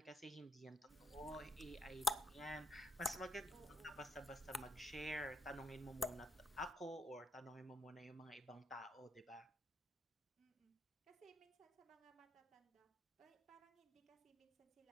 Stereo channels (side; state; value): both; normal; correlation 0.68